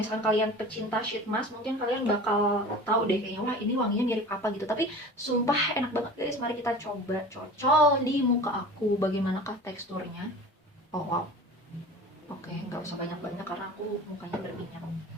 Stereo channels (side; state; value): both; normal; correlation 0.38